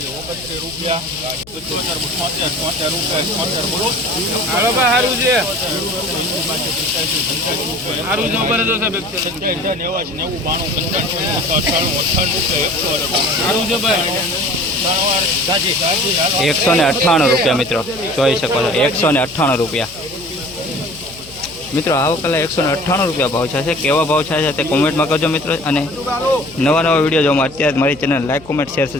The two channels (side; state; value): left; noise; hum, 22 dB below the sound